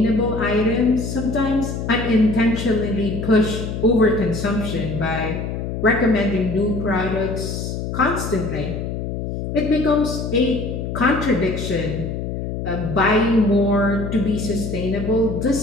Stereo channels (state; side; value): noise; left; hum, 4 dB below the sound